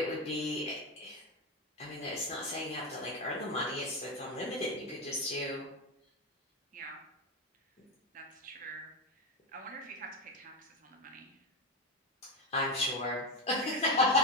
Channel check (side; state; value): both; normal; correlation 0.13